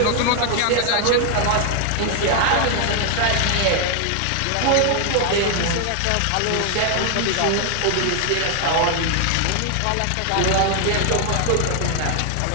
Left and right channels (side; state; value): both; different; correlation 0.00